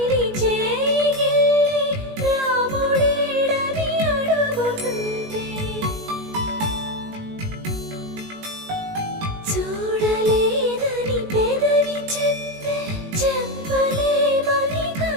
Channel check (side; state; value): left; late; 19 ms